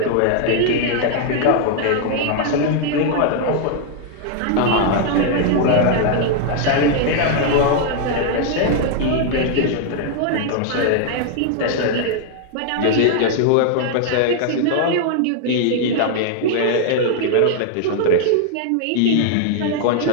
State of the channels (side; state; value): both; different; correlation 0.00